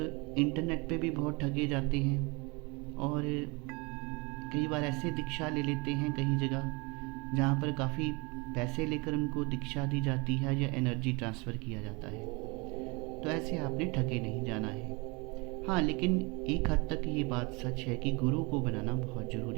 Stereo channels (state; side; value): quieter; left; 28.3 dB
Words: इंटरनेट पे भी बहुत ठगे जाते हैं और कई बार ऐसे दीक्षा ले लेते हैं कई जगह जहाँ पर काफ़ी पैसे लेकर उनको दीक्षा दी जाती है या एनर्जी ट्रांसफ़र किया जाता है। तो ऐसे आपने ठगे नहीं जाना है। हाँ, लेकिन एक हद तक ये बात सच है कि गुरु को बनाना बहुत